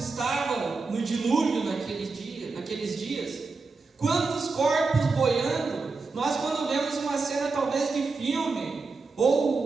no dilúvio naqueles dias? Quantos corpos boiando? Nós, quando vemos uma cena talvez de filme,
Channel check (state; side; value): quieter; left; 4.1 dB